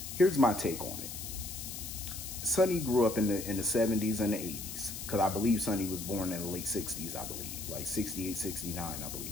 Here's my take on it. Sonny grew up in the 70s and the 80s, because I believe Sonny was born in the late 60s, I believe, like 68, 69, I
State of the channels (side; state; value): left; noise; hiss, 8 dB below the sound